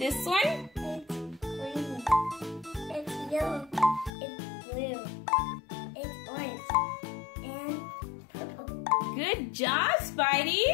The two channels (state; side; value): drops out; right; at 4.1 s